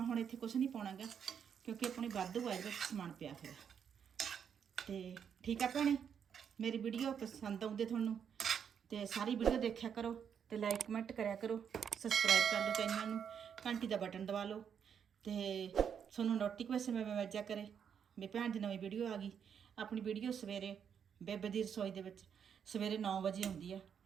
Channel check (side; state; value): left; quieter; 7.7 dB